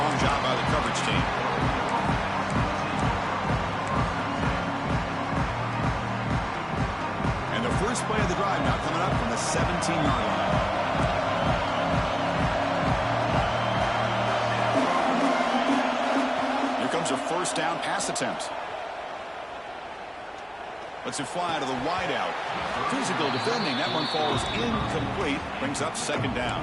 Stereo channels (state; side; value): identical; both; correlation 1.00